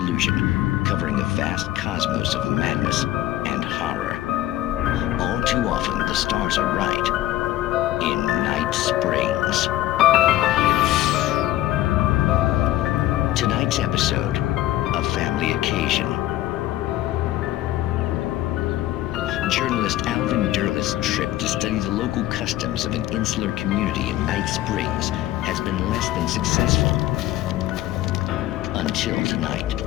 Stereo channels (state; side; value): quieter; right; 14.7 dB